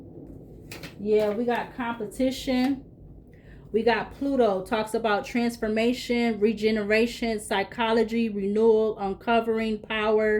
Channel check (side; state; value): both; identical; correlation 1.00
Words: Yeah, we got competition. We got Pluto, talks about transformation, regeneration, psychology, renewal, uncovering